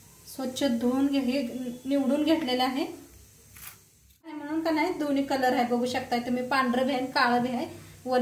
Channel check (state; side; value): identical; both; correlation 1.00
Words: स्वच्छ धुवून हे निवडून घेतलेलं आहे, म्हणून का नाही दोन्ही कलर आहे बघू शकताय तुम्ही, पांढरं भी आहे काळं भी आहे,